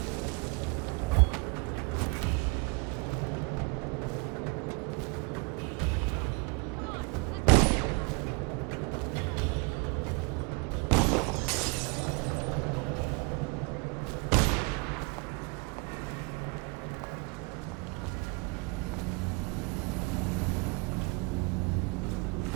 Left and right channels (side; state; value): left; quieter; 30.2 dB